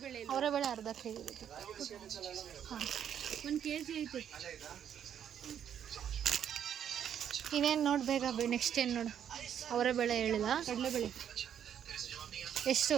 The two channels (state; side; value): quieter; left; 9.2 dB